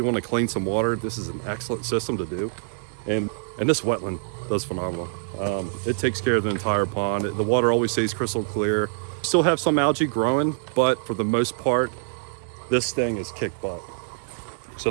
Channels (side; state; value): left; silent; 62 dB below the other